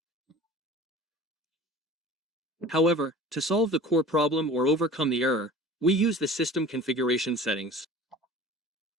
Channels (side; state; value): both; normal; correlation 0.42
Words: However, to solve the core problem or overcome the error, we use the system configuration settings.